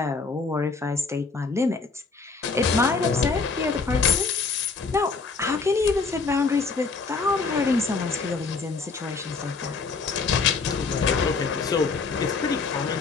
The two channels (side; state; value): right; quieter; 4.5 dB